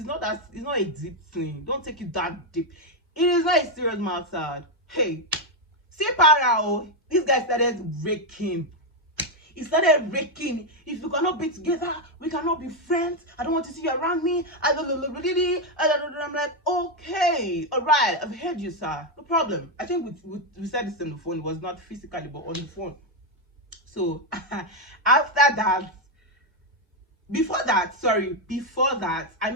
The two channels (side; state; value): both; normal; correlation 0.04